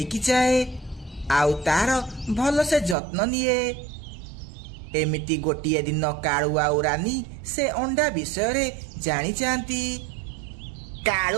जाए आउ तार भल से जत्न निए। एमिति गोटिए दिन कालू आउ रानी से अंडा विषय रे जानी जाती।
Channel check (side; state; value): left; drops out; at 3.0 s